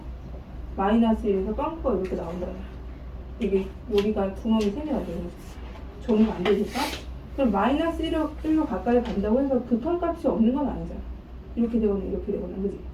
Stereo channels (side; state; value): both; identical; correlation 1.00